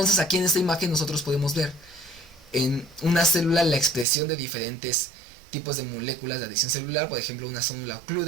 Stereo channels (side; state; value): left; drops out; at 4.0 s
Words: aquí en esta imagen nosotros podemos ver en una célula la expresión de diferentes tipos de moléculas de adhesión celular, por ejemplo una célula